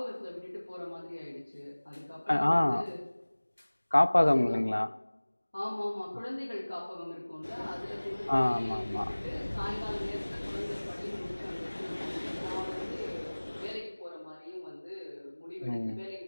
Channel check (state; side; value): inverted; both; correlation -1.00